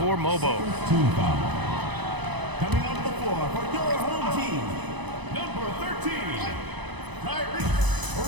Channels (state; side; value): late; left; 1.0 ms